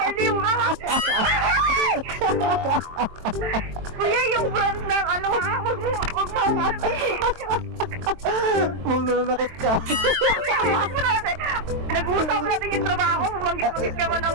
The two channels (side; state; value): left; late; 23 ms